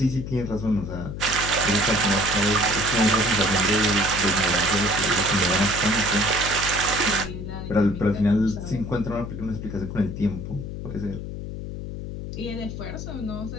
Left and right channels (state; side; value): noise; left; hum, 7 dB below the sound